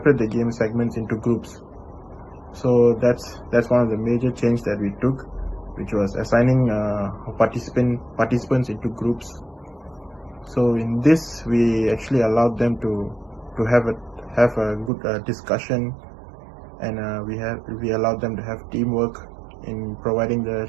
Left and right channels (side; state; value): left; drops out; at 14.9 s